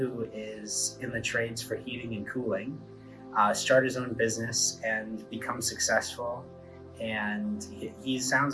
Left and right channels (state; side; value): identical; both; correlation 1.00